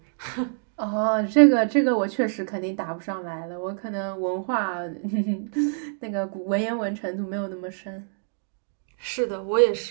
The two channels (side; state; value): left; silent; digital silence